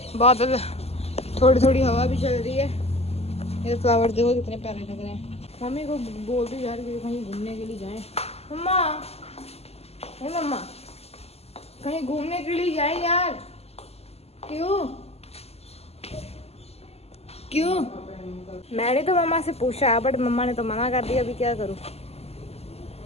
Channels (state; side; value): late; right; 0.29 ms